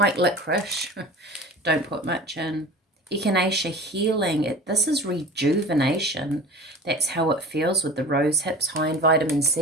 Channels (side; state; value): both; normal; correlation 0.37